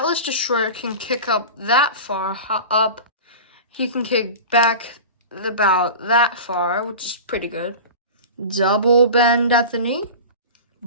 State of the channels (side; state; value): both; inverted; correlation -0.33